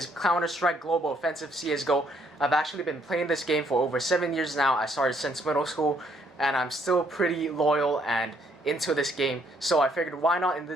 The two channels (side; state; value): both; normal; correlation 0.69